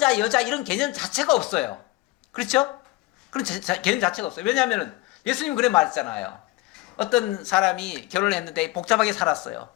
여자 이런 개념 자체가 없어요. 그렇죠? 그런 개념 자체가 없어요. 왜냐하면 예수님 그래 말했잖아요. 어떤 사람이 결혼을 했는데 복잡하게 살았어요.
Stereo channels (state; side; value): quieter; right; 19.2 dB